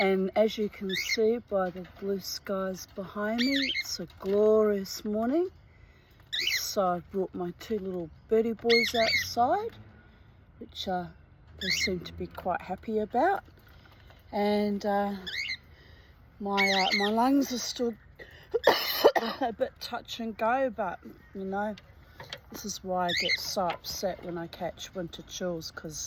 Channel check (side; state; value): both; identical; correlation 1.00